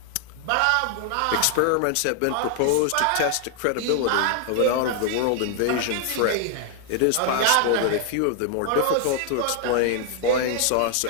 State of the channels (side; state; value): both; different; correlation 0.00